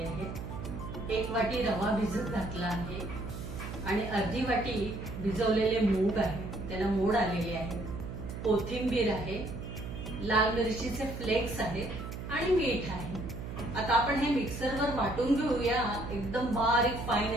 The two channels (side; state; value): right; noise; hum, 8 dB below the sound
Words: आहेत, 1 वाटी रवा भिजत घातला आहे आणि अर्धी वाटी भिजवलेले मूग आहे, त्याला मोड आलेले आहे, कोथिंबीर आहे, लाल मिरचीचे फ्लेक्स आहेत आणि मीठ आहे। आता आपण हे मिक्सरवर वाटून घेऊया, एकदम बारीक